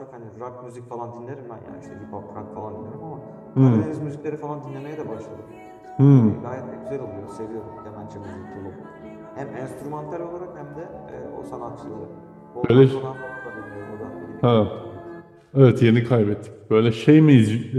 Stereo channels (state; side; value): identical; both; correlation 1.00